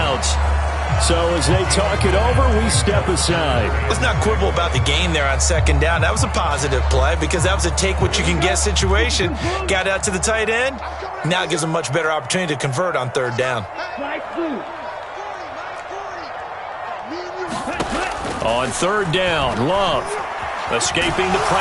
So as they talk it over, we step aside. Let's not quibble about the gain there on 2nd down. That was a positive play because that was a take-what-you-can-get situation. Got out to the tight end. Now it gives them a much better opportunity to convert on 3rd down. On 3rd down, Love escaping the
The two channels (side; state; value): both; identical; correlation 1.00